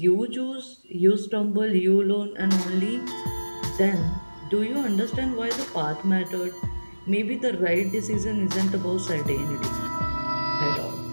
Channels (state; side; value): inverted; both; correlation -1.00